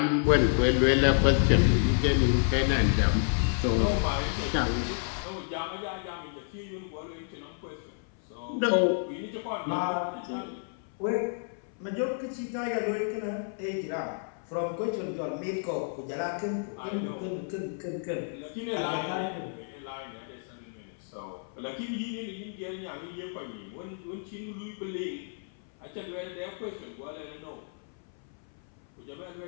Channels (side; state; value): right; silent; 57 dB below the other